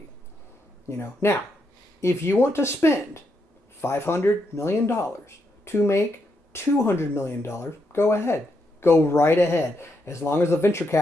Now, if you want to spend $500 million to make $200 million, go ahead. Go right ahead. As long as the venture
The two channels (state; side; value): normal; both; correlation 0.80